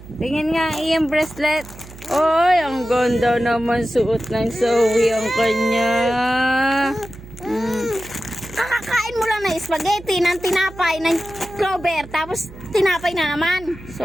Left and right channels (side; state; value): right; noise; hum, 17 dB below the sound